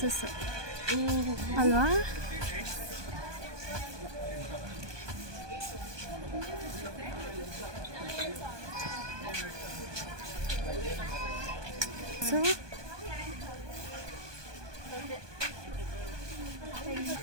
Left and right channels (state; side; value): late; left; 1.2 ms